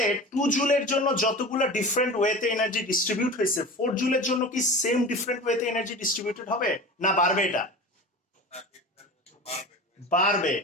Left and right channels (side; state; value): both; normal; correlation 0.33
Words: 2 জুলের জন্য যতগুলো ডিফারেন্ট ওয়েতে এনার্জি ডিস্ট্রিবিউট হয়েছে, 4 জুলের জন্য কি সেম ডিফারেন্ট ওয়েতে এনার্জি ডিস্ট্রিবিউটেড হবে না বাড়বে? এটা বাড়বে।